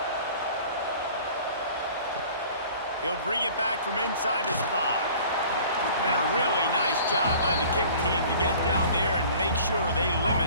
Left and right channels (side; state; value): both; inverted; correlation -0.48